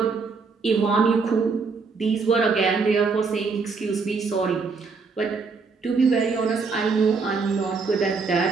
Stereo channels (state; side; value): quieter; left; 4.7 dB